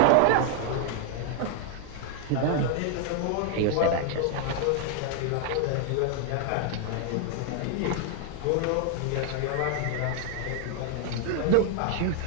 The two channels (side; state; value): both; different; correlation 0.00